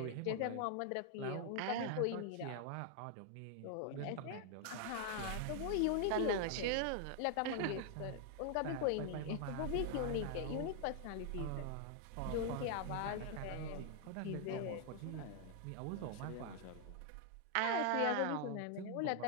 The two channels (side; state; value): both; different; correlation 0.00